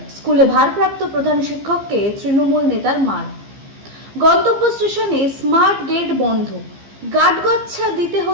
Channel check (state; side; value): late; left; 15 ms